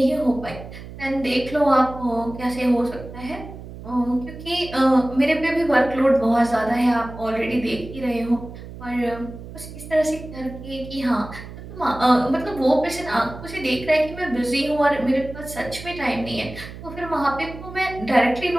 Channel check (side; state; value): right; noise; hum, 13 dB below the sound